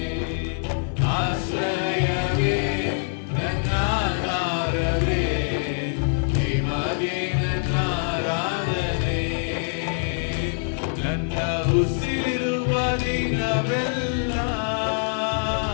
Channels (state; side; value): silent; right; digital silence